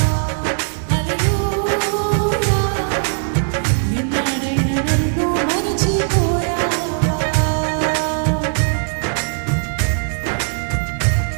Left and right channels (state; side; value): silent; left; digital silence